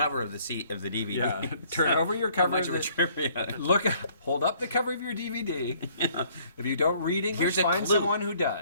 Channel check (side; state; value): both; inverted; correlation -0.61